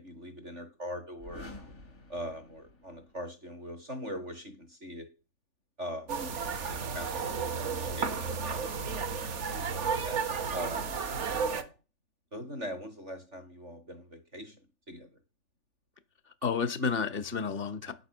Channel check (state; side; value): late; left; 3.4 ms